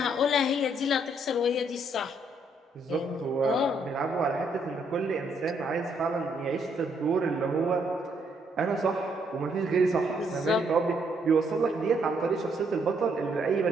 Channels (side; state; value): both; normal; correlation 0.72